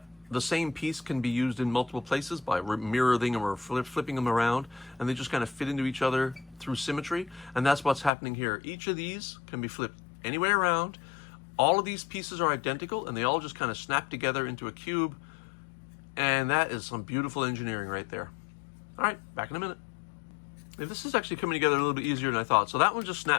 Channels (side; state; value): right; drops out; at 8.1 s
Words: the same piece can be used in multiple places by mirroring them or flipping them around, and they just kind of fit into each other through symmetry. And that's what's happening here. Each of these can be flipped any way around. All of these pieces are identical, and they all just kind of snap together into a cube, and that is some beautiful engineering right there. All right, back in a minute. This is actually coming together a little bit easier than I thought. So that one just